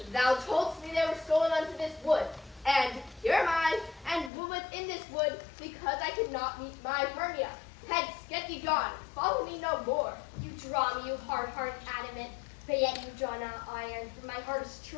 Thou toldst me they were stolen unto this wood, and here am I, and woman in this wood, because I could not meet my Hermia. Hence, get thee gone, follow me no more. You draw me, you hard-hearted adamant, but yet you draw not iron, for my heart is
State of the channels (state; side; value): drops out; right; at 4.3 s